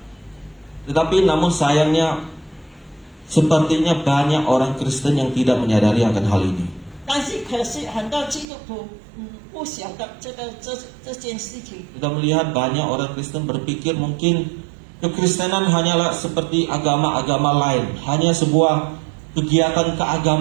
Tetapi namun sayangnya, sepertinya banyak orang Kristen yang tidak menyadari akan hal ini. 但是可是很多基督徒不晓得这件事情。 Kita melihat banyak orang Kristen berpikir mungkin Kekristenan hanyalah seperti agama-agama lain, hanya sebuah kegiatan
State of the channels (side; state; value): left; drops out; at 8.5 s